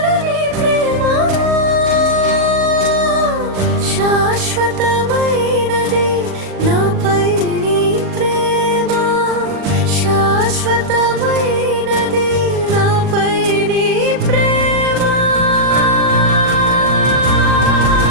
ప్రేమ శాశ్వతమైనది నాపై నీ ప్రేమ శాశ్వతమైనది నాపై నీ ప్రేమ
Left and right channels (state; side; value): late; left; 40 ms